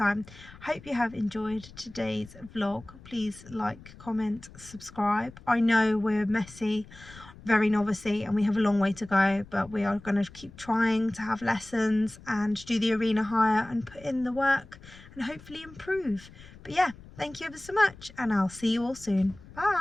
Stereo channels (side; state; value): left; noise; rumble, 20 dB below the sound